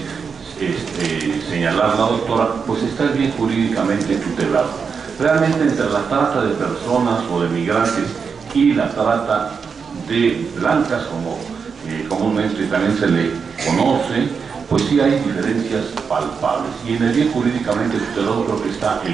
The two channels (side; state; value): left; quieter; 5.8 dB